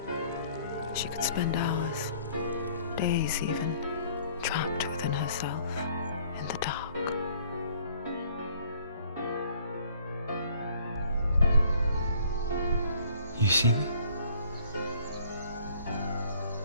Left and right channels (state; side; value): inverted; both; correlation -0.57